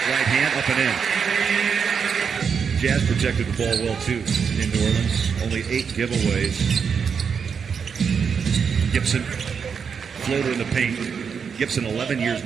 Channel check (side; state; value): left; quieter; 6.5 dB